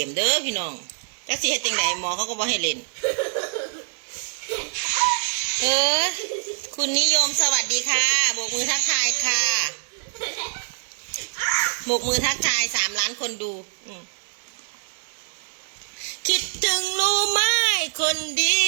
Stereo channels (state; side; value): silent; left; digital silence